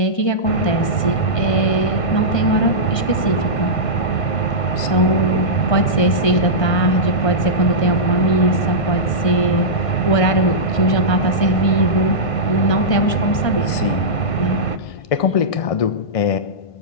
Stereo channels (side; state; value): right; late; 1.5 ms